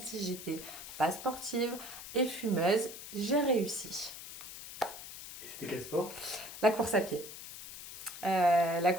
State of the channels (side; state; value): left; noise; hiss, 12 dB below the sound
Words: j'étais pas sportive et fumeuse, j'ai réussi. Et c'était quel sport? La course à pied. La